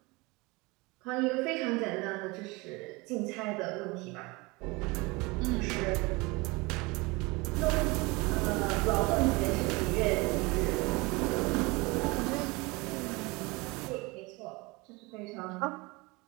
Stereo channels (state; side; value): quieter; left; 24.9 dB